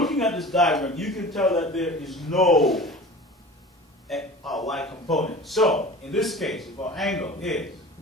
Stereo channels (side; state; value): both; normal; correlation 0.39